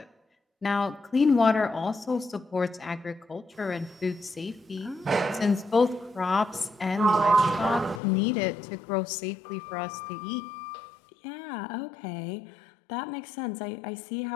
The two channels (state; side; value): drops out; right; at 8.0 s